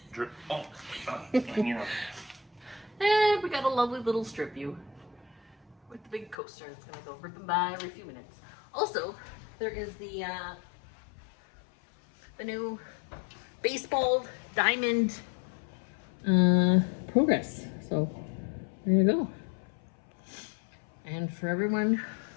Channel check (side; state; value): right; drops out; at 6.4 s